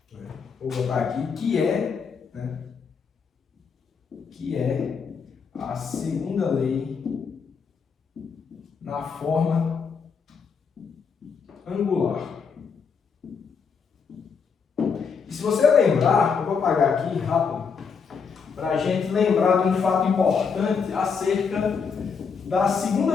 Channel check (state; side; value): quieter; right; 5.9 dB